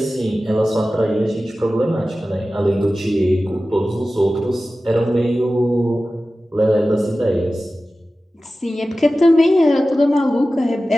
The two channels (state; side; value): normal; both; correlation 0.95